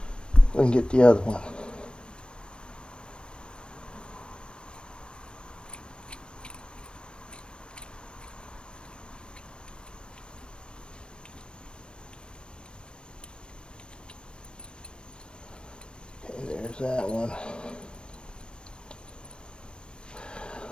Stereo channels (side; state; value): right; late; 0.055 ms